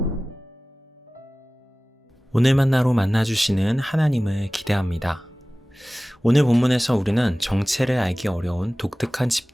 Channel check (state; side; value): normal; both; correlation 0.98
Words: 오늘 만나로 만나주시는 하나님을 기대합니다. 오늘 본문에서 우리는 정체를 알기 어려운 독특한